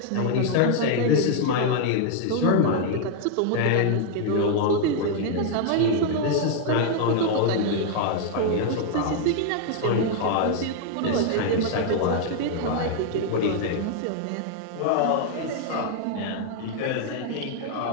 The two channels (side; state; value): both; different; correlation 0.00